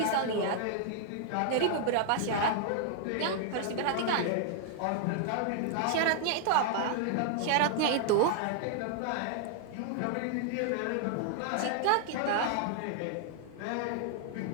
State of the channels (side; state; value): both; different; correlation 0.00